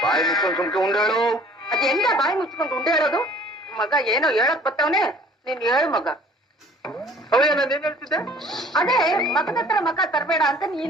ಬಾಯಿ ಮುಚ್ಕೊಂಡು ಸುಮ್ಕೆ ಉಂಡೇಳು. ಅದೆಲ್ಲ ಬಾಯಿ ಮುಚ್ಕೊಂಡು ಉಂಡೆ ಹೇಳೋದು? ಮಗ ಏನೋ ಹೇಳಕ್ ಬತ್ತವನೆ, ನೀನ್ ಹೇಳು ಮಗ. ಅವಯ್ಯ ನಾನು ಏನ್ ಹೇಳ್ತಿದ್ದೆ? ಅದೇ ಮಗದ ಹತ್ರ ಮಕ ತರಬೇಡ ಅಂತ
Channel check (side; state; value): both; normal; correlation 0.51